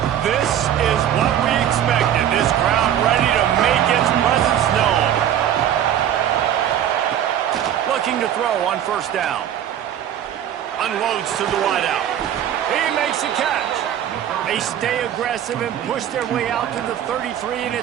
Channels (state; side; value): quieter; left; 10.4 dB